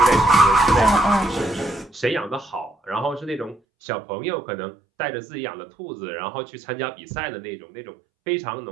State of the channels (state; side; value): drops out; left; at 3.6 s